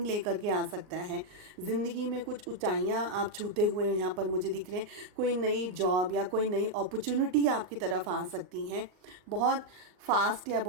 लेकर के आ सकता है। ज़िंदगी में कुछ ऊंचाइयां आप छूते हुए यहाँ पर मुझे दिख रहे हैं। कोई नई जॉब या कोई नई अपॉर्चुनिटी आपकी तरफ आ सकती हैं। बहुत फास्ट या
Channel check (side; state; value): left; late; 39 ms